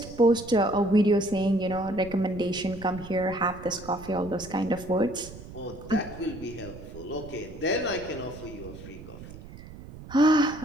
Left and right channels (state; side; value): noise; right; rumble, 15 dB below the sound